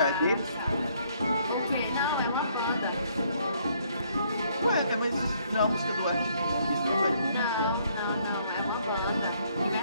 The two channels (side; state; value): both; inverted; correlation -0.66